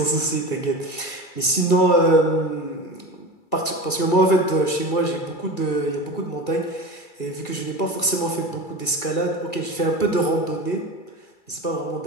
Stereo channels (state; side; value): late; right; 2.3 ms